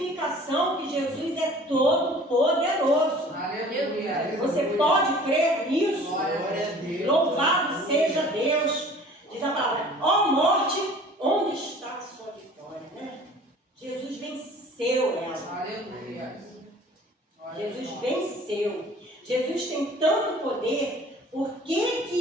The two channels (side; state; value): both; normal; correlation 0.48